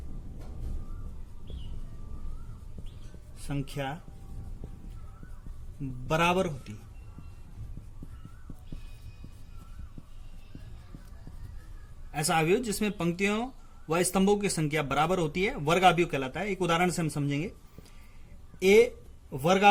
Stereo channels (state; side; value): identical; both; correlation 1.00